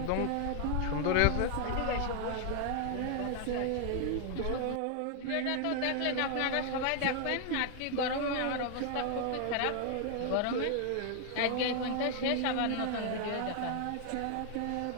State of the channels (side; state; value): both; different; correlation 0.00